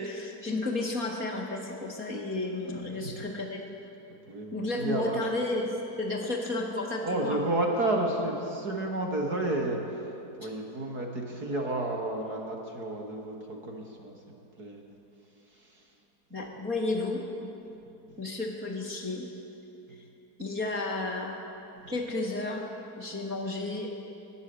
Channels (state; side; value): late; left; 4.3 ms